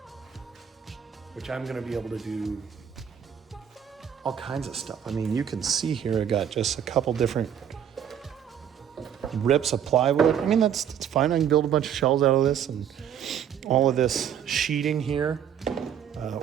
which I'm gonna be able to do all kinds of stuff. You can see here, I got just a couple different rips of plywood. That's fine. I can build a bunch of shelves out of this, and all of this sheeting here.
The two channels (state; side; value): quieter; left; 9.0 dB